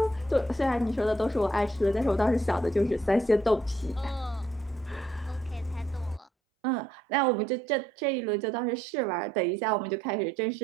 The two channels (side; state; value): left; drops out; at 6.3 s